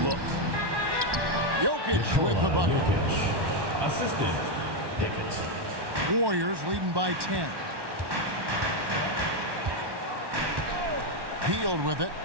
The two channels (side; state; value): left; late; 1.1 ms